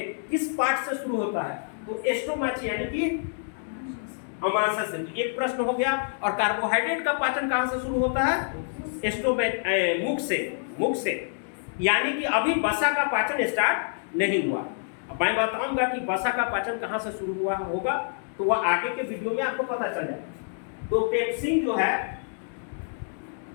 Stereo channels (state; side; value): silent; right; digital silence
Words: किस पार्ट से शुरू होता है, तो एस्टोमाची यानी कि अमाशय से। एक प्रश्न हो गया। और कार्बोहाइड्रेट का पाचन कहां से शुरू होता है, मुख से, यानी कि अभी वसा का पाचन स्टार्ट नहीं हुआ। अब मैं बताऊंगा कि वसा का पाचन कहां से शुरू हुआ होगा, तो वह आगे के वीडियो में आपको पता चल जाएगा। तो पेप्सिन जो है